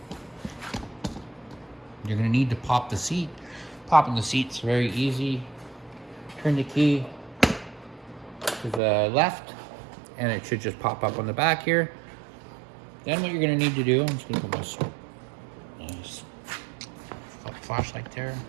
You're gonna need to pop the seat. Popping the seat's very easy. Turn the key to the left and it should just pop up on the back here. Then what you're gonna need to do, I'm just gonna put my flashlight there.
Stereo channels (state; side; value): drops out; left; at 8.8 s